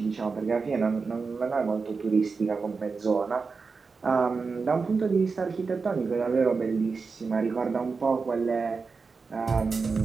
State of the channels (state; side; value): quieter; left; 4.7 dB